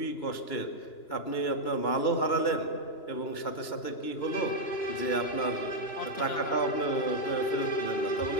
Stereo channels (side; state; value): right; late; 2.9 ms